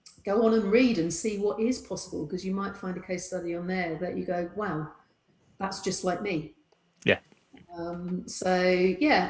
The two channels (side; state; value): both; identical; correlation 1.00